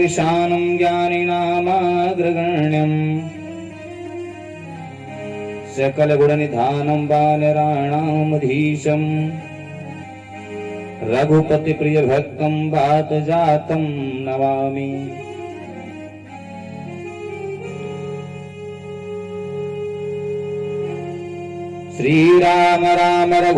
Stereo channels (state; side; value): identical; both; correlation 1.00